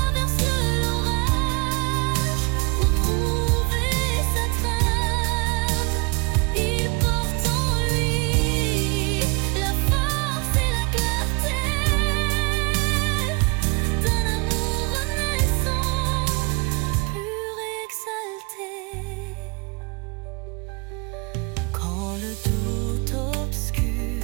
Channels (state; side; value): quieter; left; 30.5 dB